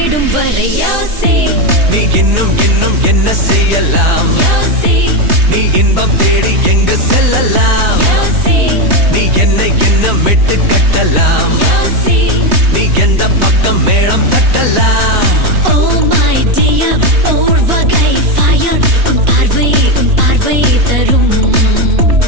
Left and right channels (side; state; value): left; late; 3.2 ms